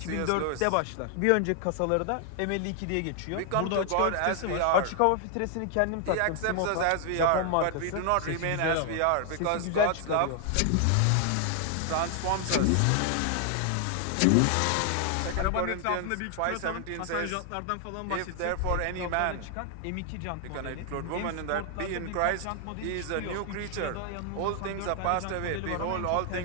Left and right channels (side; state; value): both; different; correlation 0.00